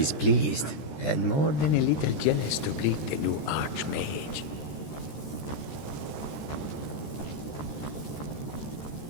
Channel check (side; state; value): right; late; 14 ms